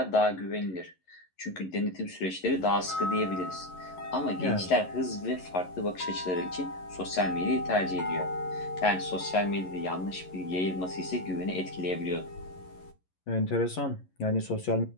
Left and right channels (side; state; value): right; late; 11 ms